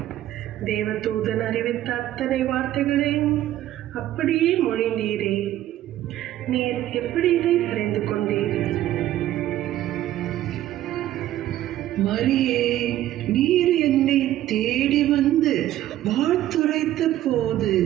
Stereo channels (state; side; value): quieter; left; 13.5 dB